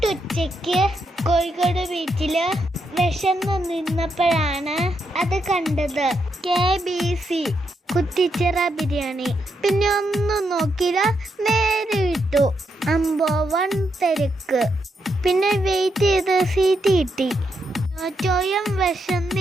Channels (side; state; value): both; normal; correlation 0.81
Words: Kozhikode ബീച്ചില് വിശന്ന് നിന്നപ്പോഴാണ് അത് കണ്ടത്. KBC കുറ്റിച്ചിറ ബിരിയാണി. പിന്നെ ഒന്നും നോക്കിയില്ല, നേരെ വിട്ടു. അമ്പോവൺ തിരക്ക്. പിന്നെ വെയിറ്റ് ചെയ്ത് സീറ്റ് കിട്ടി. ചോയം